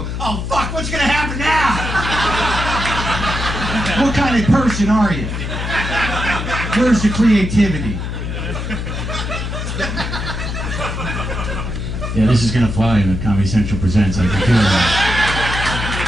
oh fuck, what's gonna happen now? What kind of person are you? Where's the creativity? Yeah, this is gonna fly in the Comedy Central Presents. I can feel that.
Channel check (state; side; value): noise; left; hum, 4 dB below the sound